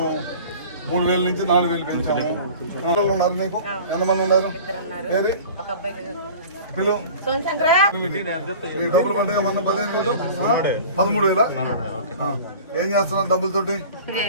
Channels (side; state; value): both; inverted; correlation -0.42